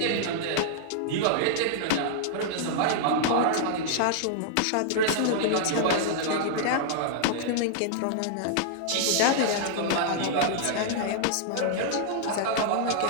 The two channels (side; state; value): both; different; correlation -0.01